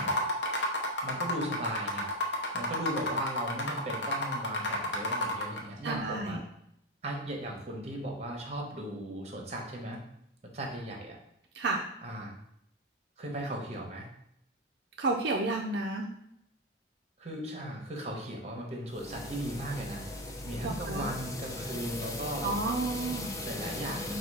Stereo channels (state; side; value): normal; both; correlation 0.12